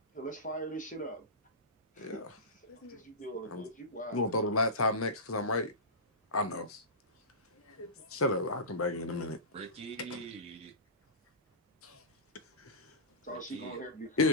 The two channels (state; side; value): normal; both; correlation -0.20